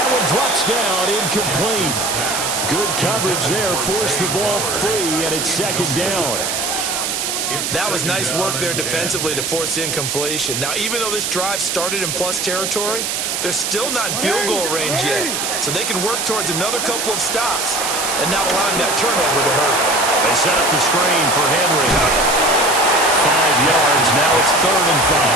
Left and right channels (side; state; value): right; noise; hiss, 1 dB below the sound